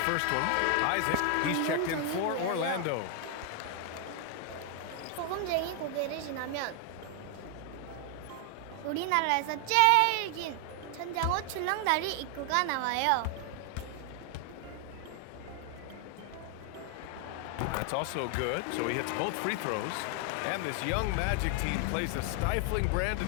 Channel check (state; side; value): different; both; correlation 0.00